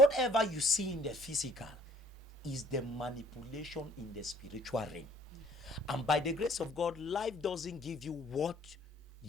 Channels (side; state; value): both; normal; correlation 0.57